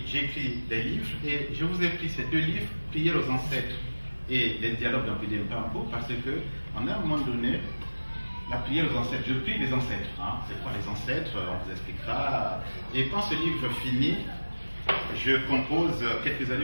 j'écris des livres. Et je vous ai pris ces 2 livres, Prières aux ancêtres et les dialogues d'Ampélie Mpampo, parce que, en un moment donné, la prière aux ancêtres, je prie les ancêtres. Hein. C'est quoi les ancêtres? On vous expliquera. Et quand ce livre finit, je compose quelques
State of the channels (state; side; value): inverted; both; correlation -1.00